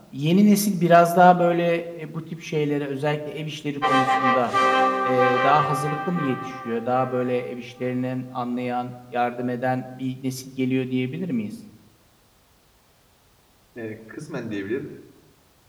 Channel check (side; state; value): both; identical; correlation 1.00